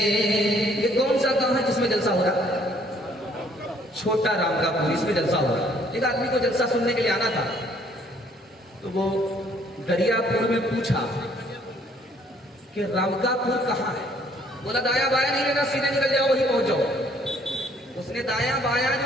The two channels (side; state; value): both; normal; correlation 0.63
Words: یہ کون سا گاؤں ہے جس میں جلسہ ہو رہا چھوٹا رام کا پور اس میں جلسہ ہو رہا ایک آدمی کو جلسہ سننے کے لیے آنا تھا تو وہ دریا پور میں پوچھا کہ رامکا پور کہاں ہے بولا دایا بایا نہیں لینا سیدھے نکل جاؤ وہی پہنچ جاؤ اس نے دایا بایا